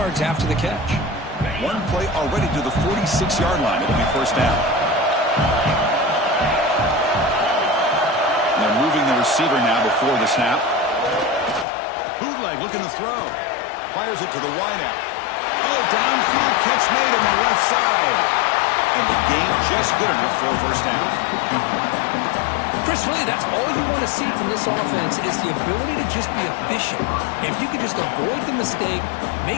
after the catch. One play already to the 46-yard line. It'll be first down. They're moving the receiver now before the snap. Bootleg looking to throw. Fires it to the wideout. Oh, downfield catch made on the left side. And the gain just good enough for a first down. Chris, really, that's all you want to see from this offense is the ability to just be efficient. If you could just avoid the mistake,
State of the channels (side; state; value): right; drops out; at 11.7 s